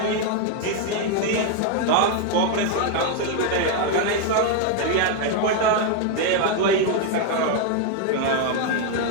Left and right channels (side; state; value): both; different; correlation 0.01